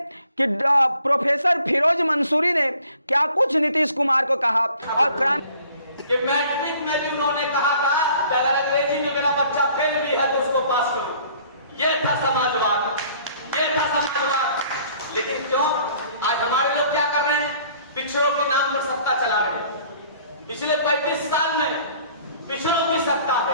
कि प्रोफेसर फिरोज मंसूरी ने क्या कुछ नीतीश कुमार को कहा। और कि मैट्रिक में भी उन्होंने कहा था कि अगर अंग्रेजी में मेरा बच्चा फेल भी है तो उसको पास करो। ये था समाजवाद, ये था समाजवाद। लेकिन क्यों आज हमारे लोग क्या कर रहे हैं? पिछड़ों के नाम पर सत्ता चला रहे हैं। पिछले 35 साल में पिछड़ों की सत्ता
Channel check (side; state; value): both; inverted; correlation -0.55